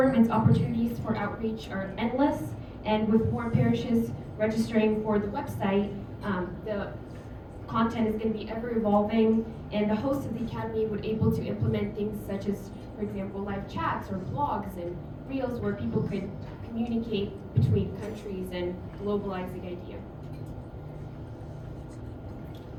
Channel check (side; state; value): both; identical; correlation 1.00